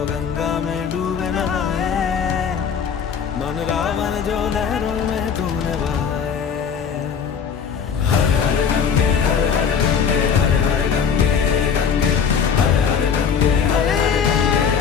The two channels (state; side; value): quieter; right; 6.9 dB